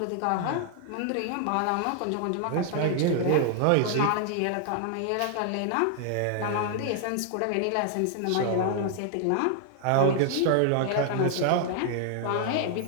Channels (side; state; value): both; different; correlation 0.00